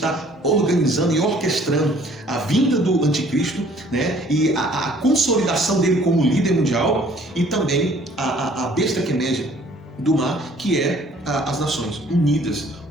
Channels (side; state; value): both; normal; correlation 0.57